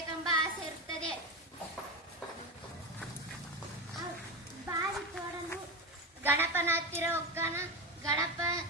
ಆಸೆ ಇರುತ್ತದೆ. ಬಾವಿ ತೋಡಲು ಗಣಪನ ಹತ್ತಿರ ಹೋಗ್ತಾನ. ಗಣಪ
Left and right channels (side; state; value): both; normal; correlation 0.19